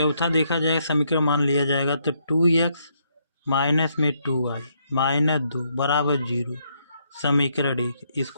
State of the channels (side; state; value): both; inverted; correlation -0.73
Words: देखा जाएगा, समीकरण मान लिया जाएगा, तो 2x माइनस में 2y -2 बराबर 0, समीकरण 1।